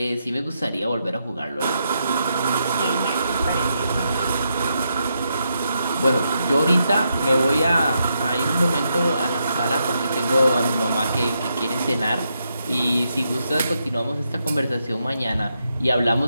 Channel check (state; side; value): inverted; both; correlation -0.82